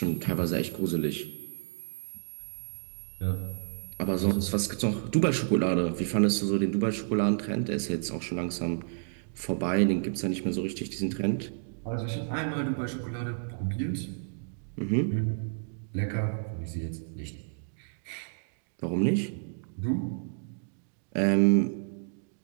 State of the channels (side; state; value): left; silent; digital silence